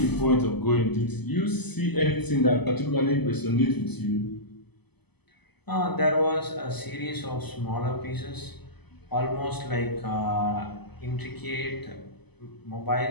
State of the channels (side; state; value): right; late; 0.99 ms